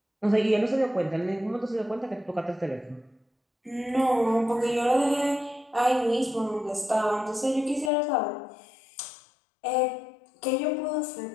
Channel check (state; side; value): drops out; right; at 7.9 s